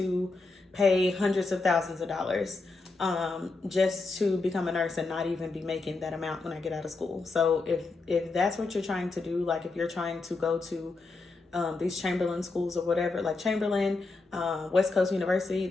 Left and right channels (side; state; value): right; quieter; 3.7 dB